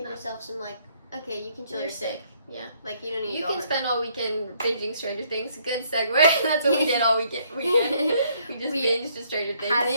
yourself some okay, you can chill. You're sick. Yeah, like you don't need. You can spend all weekend binging Stranger Things. Good segue. That's what we did all weekend. We just binged to Stranger Things.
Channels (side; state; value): both; inverted; correlation -0.68